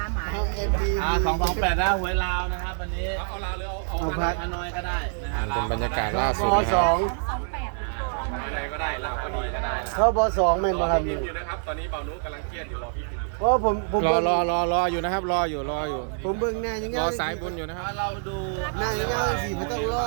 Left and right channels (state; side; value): silent; left; 61 dB below the other